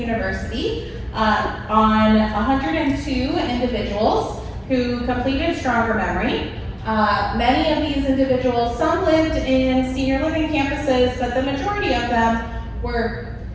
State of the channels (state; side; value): identical; both; correlation 1.00